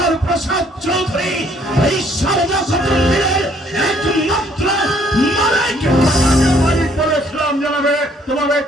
প্রসাদ চৌধুরী, এই সারদা কুটুম্বের একমাত্র মালিক। মালিক বলে ইসলাম জানাবে, তোমার এই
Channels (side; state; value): both; normal; correlation 0.64